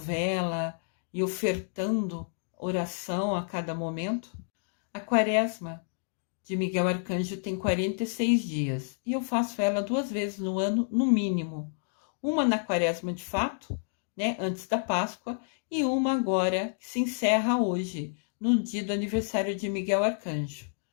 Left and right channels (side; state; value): right; silent; digital silence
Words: e ofertando oração a cada momento. A quaresma de Miguel Arcanjo tem 46 dias, e eu faço ela 2 vezes no ano, no mínimo. Uma na quaresma de fato, né, antes da Páscoa, e uma agora que se encerra hoje, no dia do aniversário de Miguel Arcanjo.